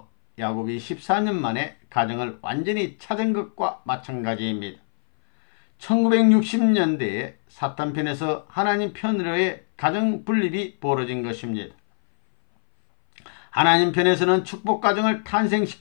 야곱이 14년 만에 가정을 완전히 찾은 것과 마찬가지입니다. 1960년대에 사탄편에서 하나님 편으로의 가정 분립이 벌어진 것입니다. 하나님 편에서는 축복가정을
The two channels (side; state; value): right; silent; 59 dB below the other